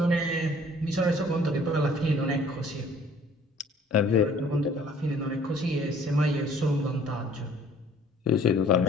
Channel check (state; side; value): normal; both; correlation 0.55